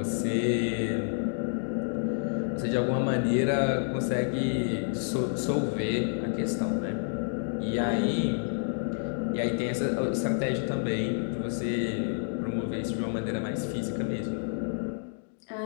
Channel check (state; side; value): silent; right; digital silence